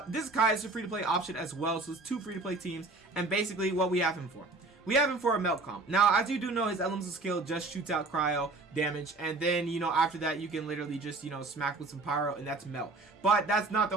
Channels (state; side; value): quieter; left; 3.3 dB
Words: this is Kaya. It's a free-to-play option as well, so it's 2 free-to-play teams, and basically what we have him for. We have him for a Melt comp. Now, as you do know, his elemental skill just shoots out cryo damage, and then, you know, after that, you can literally just, you know, smack with some pyro, and that's Melt. But that's not the